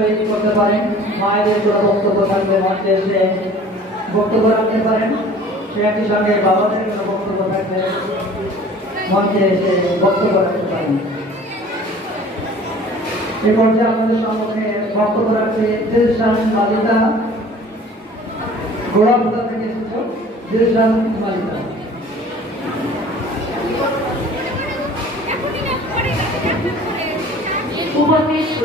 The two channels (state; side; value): normal; both; correlation 0.48